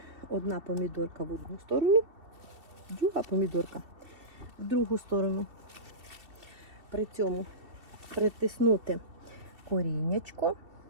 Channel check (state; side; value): late; left; 2.7 ms